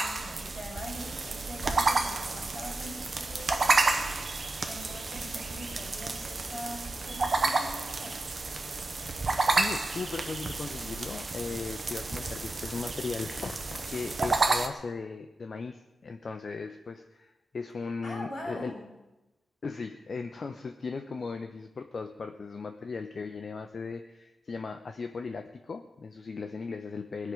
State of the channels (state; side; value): normal; both; correlation 0.90